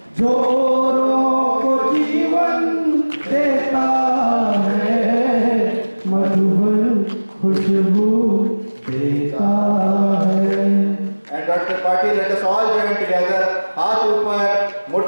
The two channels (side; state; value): both; inverted; correlation -1.00